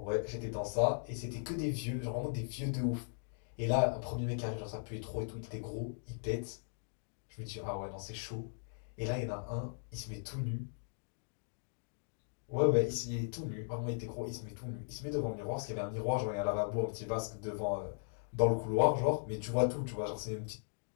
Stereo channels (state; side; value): silent; right; digital silence